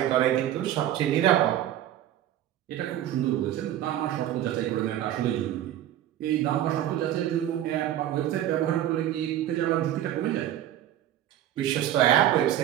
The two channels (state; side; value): quieter; left; 12.1 dB